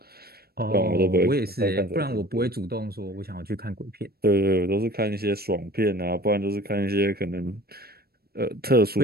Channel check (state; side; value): late; left; 0.45 ms